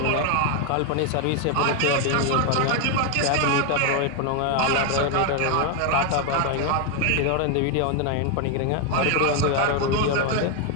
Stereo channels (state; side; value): different; both; correlation 0.01